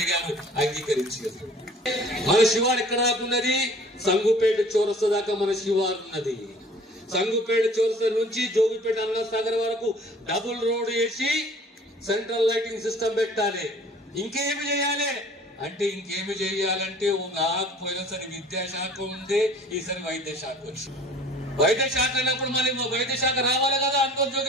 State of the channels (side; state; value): both; normal; correlation 0.50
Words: గారు అంగీకరించారు. మన శివారు ఎక్కడ ఉన్నది? సంగుపేట చౌరస్తా దాకా మన శివారు ఉన్నది. సంగుపేట చౌరస్తా నుంచి జోగిపేట అన్నసాగర్ వరకు డబుల్ రోడ్ వేసి సెంట్రల్ లైటింగ్ సిస్టమ్ పెట్టాలి. ఇంకేమి చేయాలి? అంటే ఇంకేమి చేయాలంటే నాకు పోయినసారి విద్యాశాఖ ఉండే, ఈసారి వైద్య శాఖ వచ్చింది. వైద్య శాఖ అన్నప్పుడు మళ్ళీ వైద్య శాఖ రావాలి కదా అందరూ